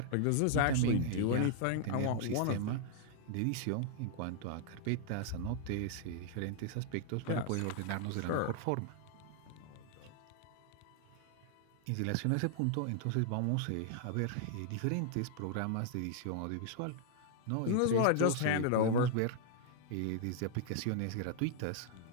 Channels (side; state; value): both; different; correlation 0.00